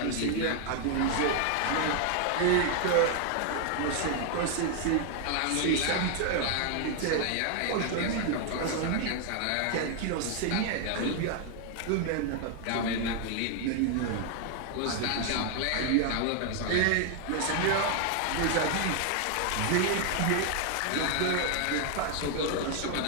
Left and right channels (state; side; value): different; both; correlation 0.00